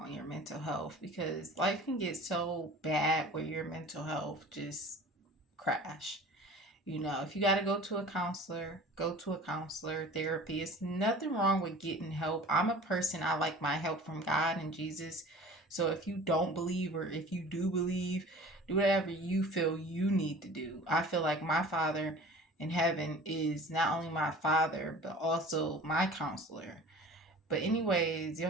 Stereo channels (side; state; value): both; normal; correlation 0.43